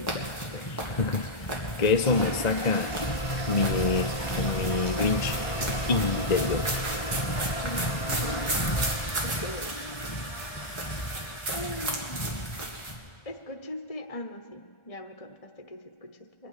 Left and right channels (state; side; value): late; right; 1.4 ms